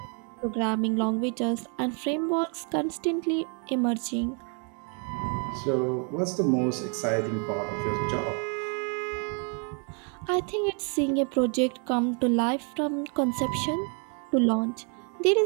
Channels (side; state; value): left; quieter; 39.4 dB